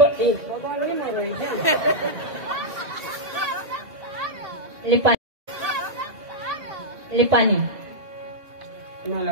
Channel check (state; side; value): late; left; 1.9 ms